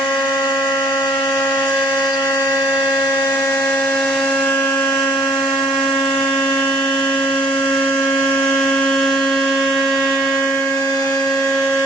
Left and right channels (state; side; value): normal; both; correlation 0.57